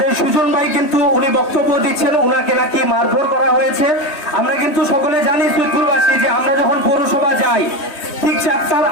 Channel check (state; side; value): late; right; 3.1 ms